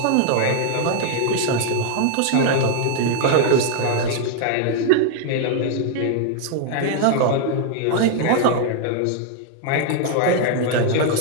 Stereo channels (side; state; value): both; different; correlation 0.00